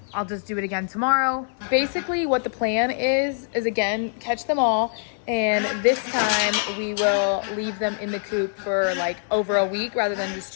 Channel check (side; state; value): right; silent; 60 dB below the other